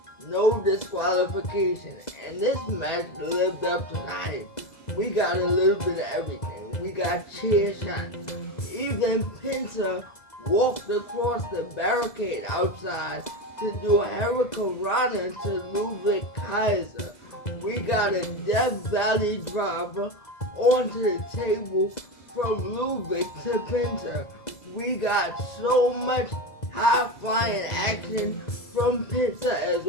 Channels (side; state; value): right; late; 2.0 ms